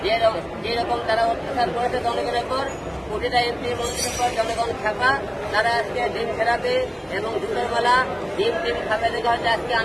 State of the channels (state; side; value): identical; both; correlation 1.00